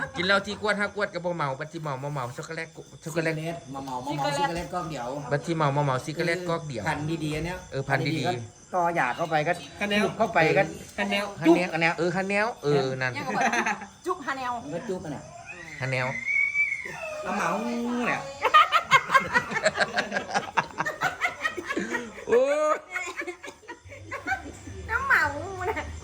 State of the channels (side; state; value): both; identical; correlation 1.00